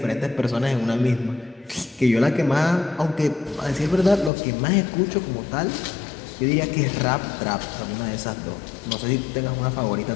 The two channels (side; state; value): right; drops out; at 4.3 s